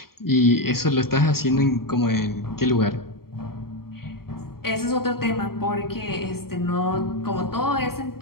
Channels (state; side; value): late; right; 0.93 ms